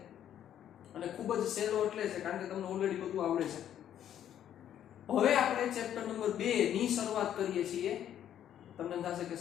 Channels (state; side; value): quieter; right; 10.5 dB